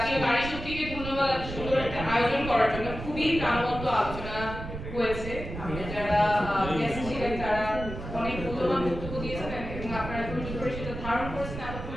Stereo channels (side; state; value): right; noise; rumble, 8 dB below the sound